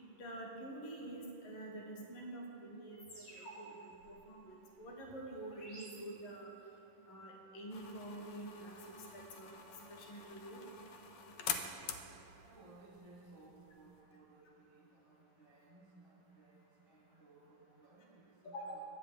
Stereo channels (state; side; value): late; right; 11 ms